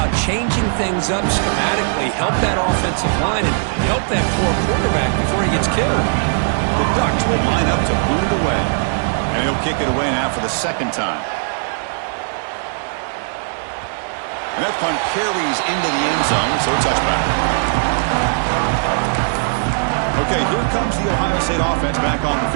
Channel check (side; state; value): left; silent; digital silence